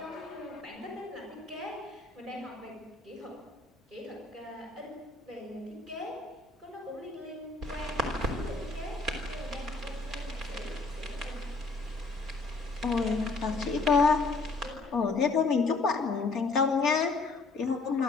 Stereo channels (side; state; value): right; quieter; 3.6 dB